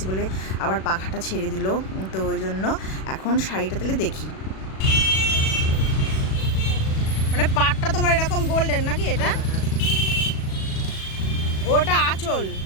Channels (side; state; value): right; late; 37 ms